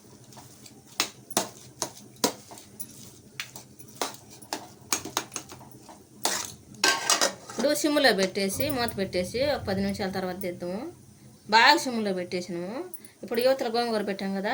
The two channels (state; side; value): identical; both; correlation 1.00